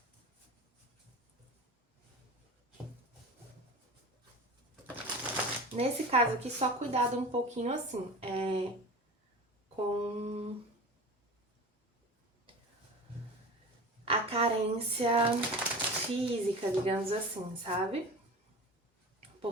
Nesse caso aqui, só cuidado um pouquinho assim, com a carência física, digamos assim, sabe?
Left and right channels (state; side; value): normal; both; correlation 0.34